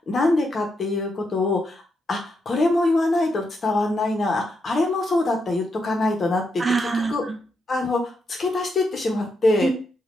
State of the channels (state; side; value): normal; both; correlation 0.82